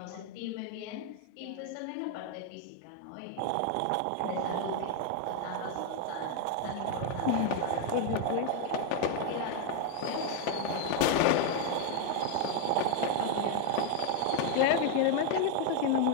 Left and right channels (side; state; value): both; different; correlation 0.01